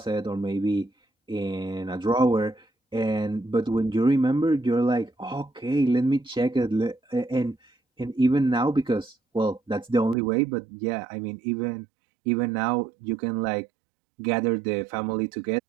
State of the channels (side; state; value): left; drops out; at 10.2 s